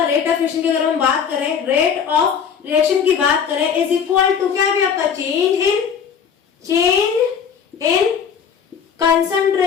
रेट ऑफ रिएक्शन की अगर हम बात करें, रेट ऑफ रिएक्शन की बात करें इज इक्वल टू क्या भी आपका change in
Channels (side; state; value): right; quieter; 7.2 dB